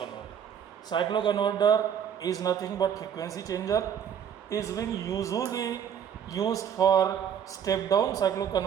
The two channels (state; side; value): quieter; left; 8.5 dB